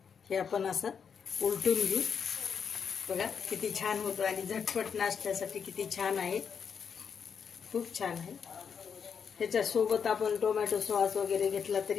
हे आपण असं उलटून घेऊ. बघा किती छान होतं आणि झटपट नाश्त्यासाठी किती छान आहे, खूप छान आहे. ह्याच्यासोबत आपण टोमॅटो सॉस वगैरे घेतला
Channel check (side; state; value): right; quieter; 6.8 dB